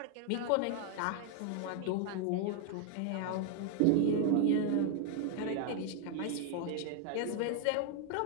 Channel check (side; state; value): both; different; correlation 0.00